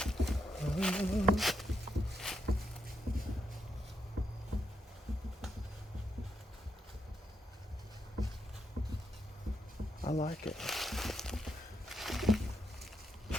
I like it.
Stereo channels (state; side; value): normal; both; correlation 0.81